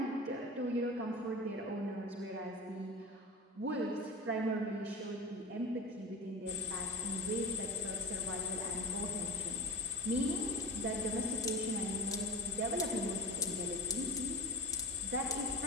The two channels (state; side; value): normal; both; correlation 0.29